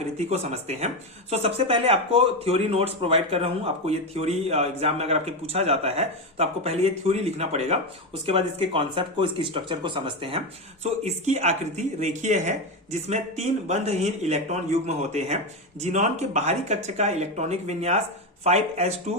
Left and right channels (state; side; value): normal; both; correlation 0.13